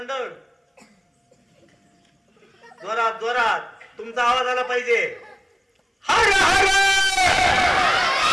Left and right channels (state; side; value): identical; both; correlation 1.00